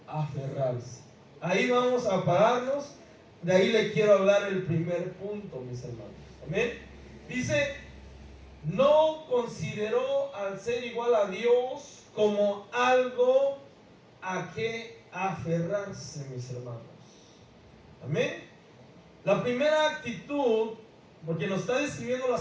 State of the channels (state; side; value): identical; both; correlation 1.00